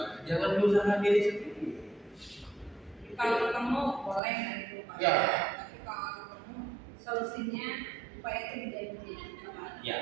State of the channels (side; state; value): left; drops out; at 4.2 s